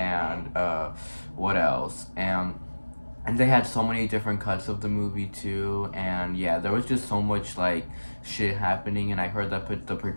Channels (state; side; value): inverted; both; correlation -1.00